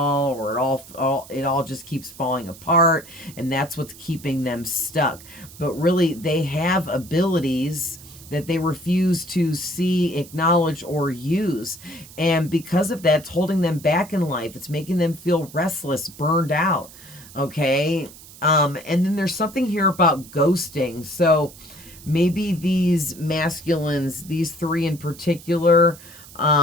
or it all just keeps falling apart, and that's what's keeping them stuck. But really, they have abilities that they refuse to see, acknowledge, or use. And because of that, it's holding them back in life. It's making them feel restless, burned out. Okay. And then there's something here about ghosting. So maybe these masculines, these three in particular,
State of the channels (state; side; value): noise; right; hiss, 19 dB below the sound